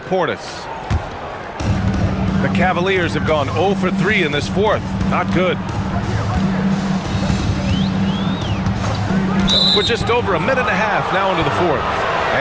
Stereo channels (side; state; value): both; identical; correlation 1.00